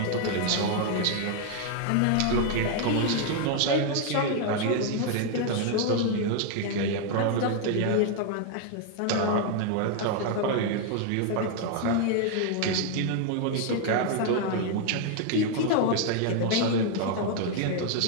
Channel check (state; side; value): different; both; correlation 0.00